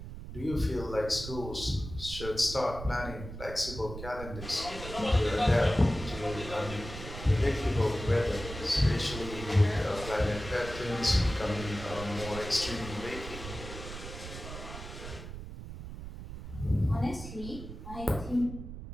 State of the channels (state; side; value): noise; right; rumble, 10 dB below the sound